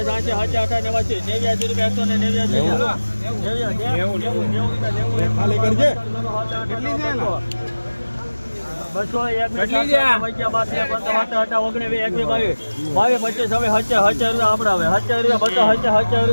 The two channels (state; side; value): inverted; both; correlation -1.00